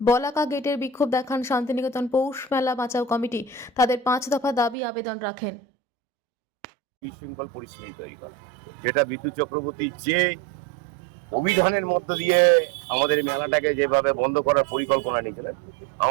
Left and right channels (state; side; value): drops out; left; at 4.8 s